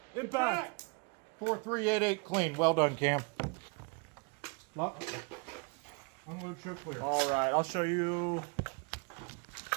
Impact. 4388 clean. Well done, Cam. Lock. Unload, show clear. All right, I'll show you.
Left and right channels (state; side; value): quieter; left; 32.4 dB